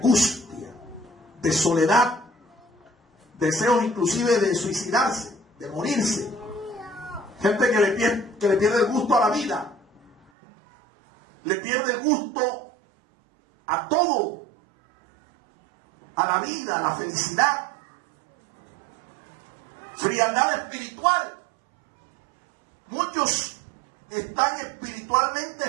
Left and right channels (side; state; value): left; drops out; at 10.3 s